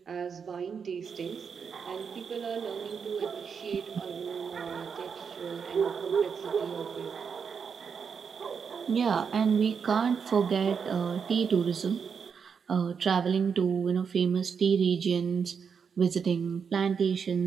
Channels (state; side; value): quieter; left; 6.4 dB